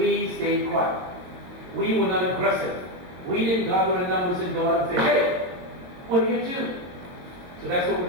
stayed quiet. We were not aggressive. We didn't gather in numbers and go out and say, hey, what are you doing? So that's what we're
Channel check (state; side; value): late; left; 22 ms